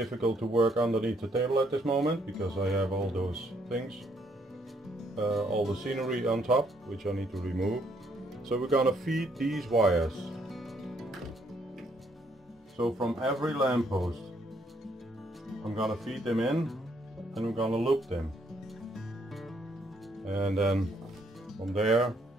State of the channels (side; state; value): both; normal; correlation 0.70